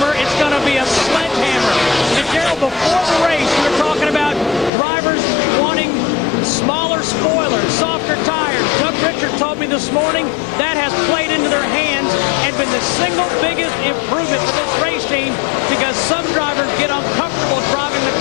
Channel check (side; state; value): right; drops out; at 4.7 s